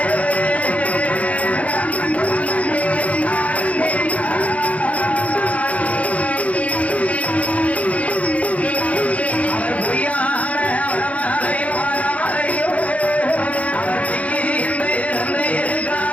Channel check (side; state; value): right; late; 0.067 ms